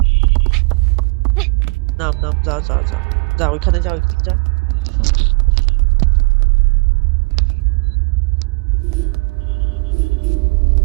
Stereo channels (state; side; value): quieter; left; 30.9 dB